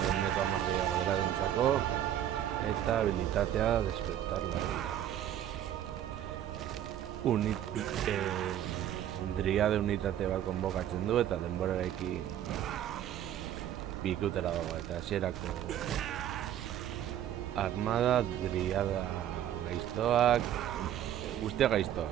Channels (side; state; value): left; quieter; 11.1 dB